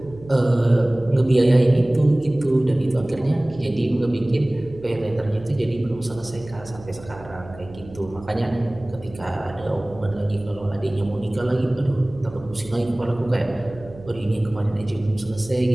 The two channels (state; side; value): noise; right; hum, 18 dB below the sound